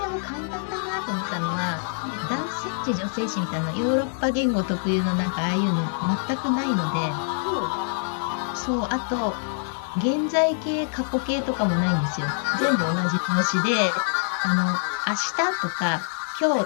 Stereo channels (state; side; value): silent; right; digital silence